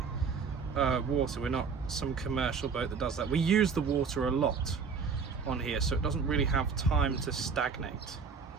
water. We're not some commercial boat that does that. We use the water a lot on here, so it doesn't really have time to stagnate.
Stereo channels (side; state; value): left; quieter; 5.6 dB